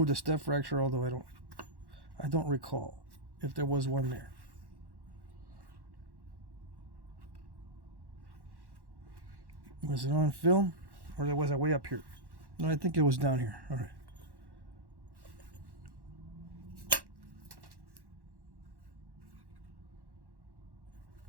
the step fracture, although I don't recall if there was one there. Was it on film, or was it way up here? No, I think it was down here. All right.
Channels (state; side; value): late; left; 1.1 ms